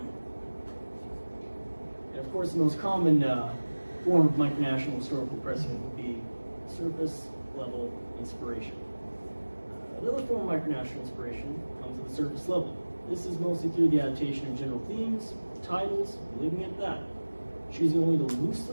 And of course, the most common form of micronational historical precedent would be surface level inspiration. Another form of micronational inspiration comes at the surface level. This is mostly through the adaptation of general themes, titles, leaving it at that. Choosing only to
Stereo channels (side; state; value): both; inverted; correlation -1.00